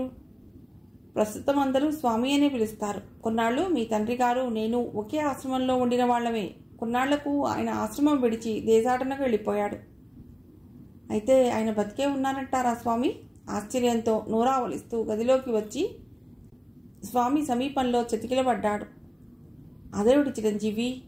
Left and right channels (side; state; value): both; identical; correlation 1.00